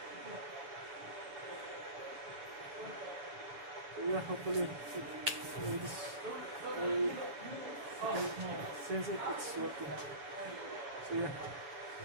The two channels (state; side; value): late; left; 7.1 ms